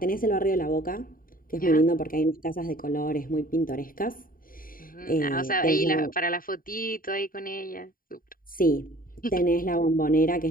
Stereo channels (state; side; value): late; right; 0.41 ms